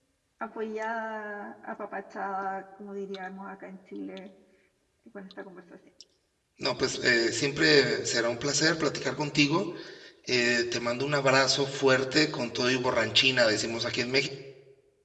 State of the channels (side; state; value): both; identical; correlation 1.00